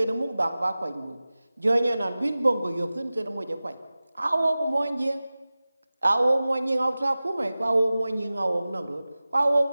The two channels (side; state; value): both; inverted; correlation -0.97